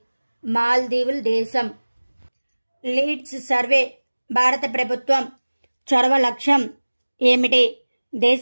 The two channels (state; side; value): inverted; both; correlation -1.00